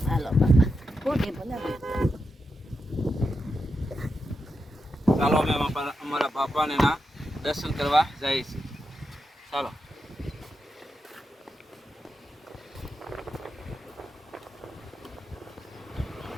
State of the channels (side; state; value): both; normal; correlation 0.87